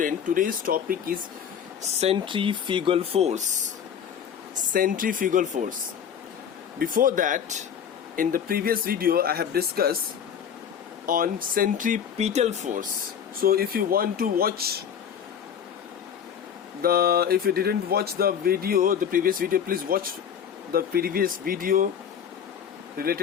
topic is centrifugal force. Centrifugal force. Before that, in the previous video, I have discussed on centripetal force. So if you want to watch if you didn't watch the previous video, please watch the previous video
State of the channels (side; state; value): right; quieter; 8.2 dB